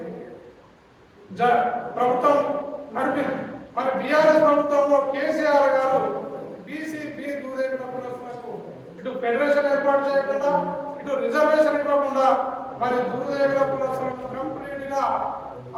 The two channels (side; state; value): both; identical; correlation 1.00